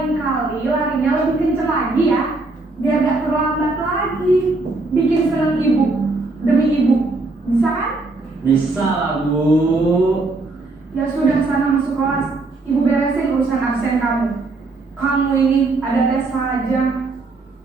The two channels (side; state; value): left; quieter; 3.3 dB